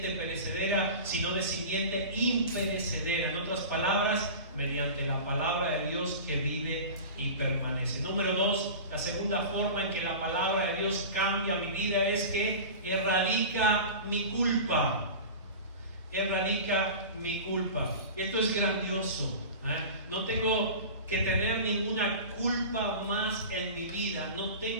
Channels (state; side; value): inverted; both; correlation -0.33